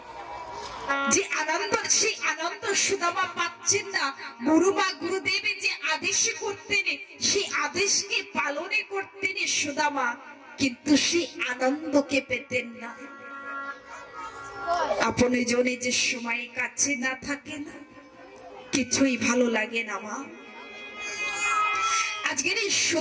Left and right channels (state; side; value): identical; both; correlation 1.00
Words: যে আনন্দ, সেই আনন্দ সুদামা পাচ্ছেন না। গুরুমা গুরুদেব যে আদেশ করতেন, সেই আদেশকে পালনে করতেন সুদামা, কিন্তু সেই আনন্দকে পেতেন না। আপনি জনে যে সময় কাছে না থাকে না, কিছুই ভালো লাগে না মা। আজকের এই